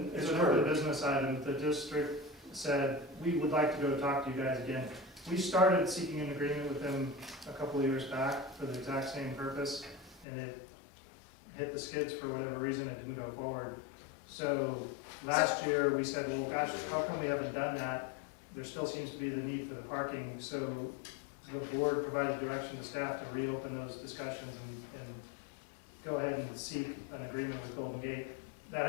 business item. The district said, we would like to go talk to you guys again. We started seeking an agreement with them a couple of years back for the exact same purpose, and it hit the skids for whatever reason, it didn't go forward. So last year, we said, well, gosh, how come we haven't done that? There still seems to be the need for the parking, so the board provided direction to staff to reopen those discussions and go ahead and seek an agreement with Golden Gate. That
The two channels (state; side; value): drops out; right; at 10.2 s